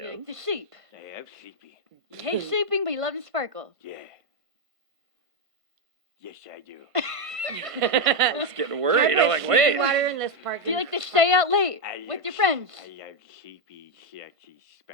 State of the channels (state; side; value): late; left; 1.5 ms